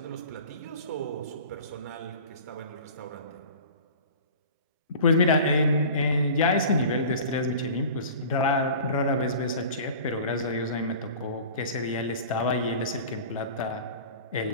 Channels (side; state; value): both; inverted; correlation -0.39